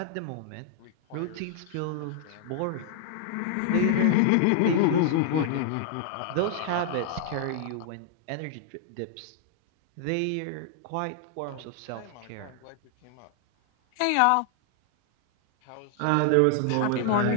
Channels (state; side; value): different; both; correlation -0.01